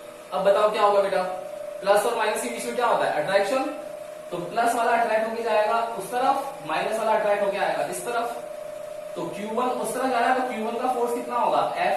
अब बताओ क्या होगा बेटा, प्लस और माइनस के बीच में क्या होता है, अट्रैक्शन, तो प्लस वाला अट्रैक्ट होके जाएगा उस तरफ, माइनस वाला अट्रैक्ट होके आएगा इस तरफ, तो Q1 उस तरफ जा रहा है, तो Q1 का फोर्स कितना होगा,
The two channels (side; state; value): both; identical; correlation 1.00